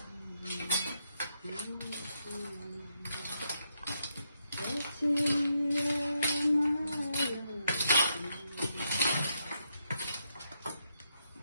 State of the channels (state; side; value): inverted; both; correlation -0.80